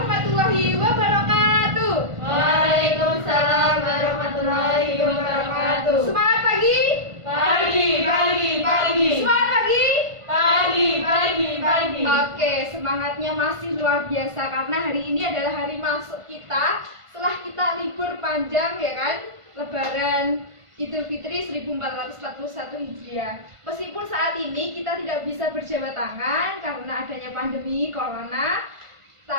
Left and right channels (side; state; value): left; late; 1.5 ms